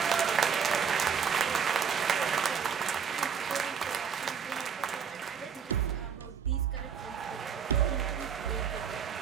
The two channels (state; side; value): quieter; left; 6.9 dB